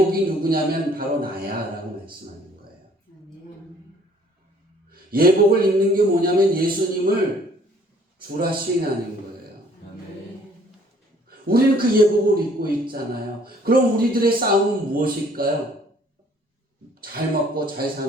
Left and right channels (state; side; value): normal; both; correlation 0.58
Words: 누구냐면 바로 나야 라고 말씀하는 거예요. 예복을 입는 게 뭐냐면 예수님을 주라 시인하는 거예요. 우리는 그 예복을 입고 있잖아요. 그럼 우리들의 싸움은 무엇일까요? 잘 먹고 잘